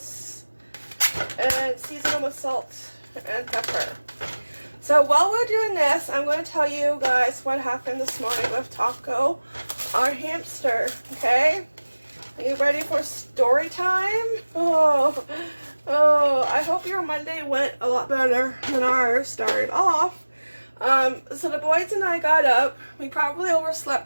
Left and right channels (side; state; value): both; inverted; correlation -1.00